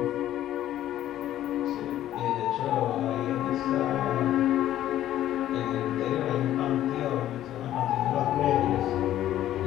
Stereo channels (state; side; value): quieter; right; 12.6 dB